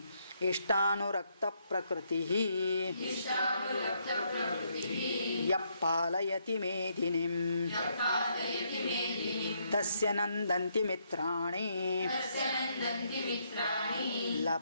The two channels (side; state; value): both; inverted; correlation -0.74